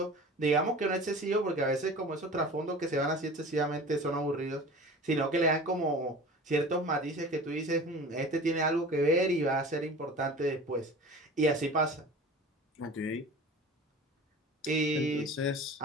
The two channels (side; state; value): both; normal; correlation 0.38